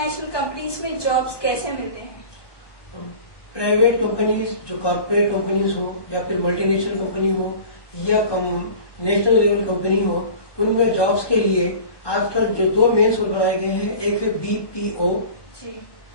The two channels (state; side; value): late; right; 1.2 ms